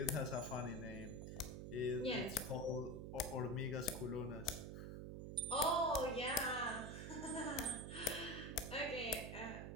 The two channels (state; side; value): noise; right; hum, 6 dB below the sound